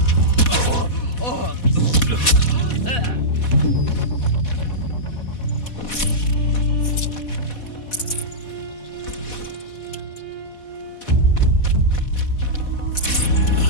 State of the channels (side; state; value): right; late; 4.1 ms